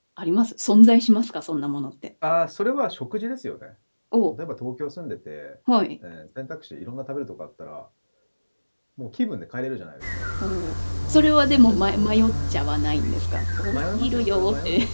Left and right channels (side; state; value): both; inverted; correlation -1.00